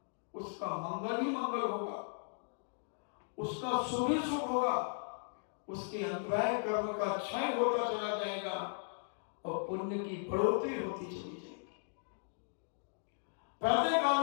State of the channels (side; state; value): right; silent; digital silence